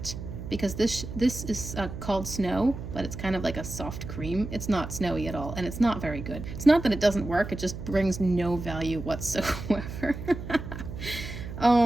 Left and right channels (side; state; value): right; noise; hum, 9 dB below the sound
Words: Because this is called Snow, but it's kind of like a soft cream. It's not snowy at all, and it's not very good. It's not that it doesn't work, it just brings no value whatsoever.